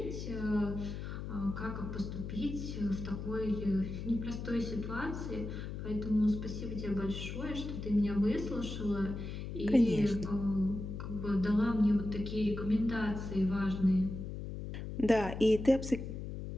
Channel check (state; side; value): noise; left; hum, 6 dB below the sound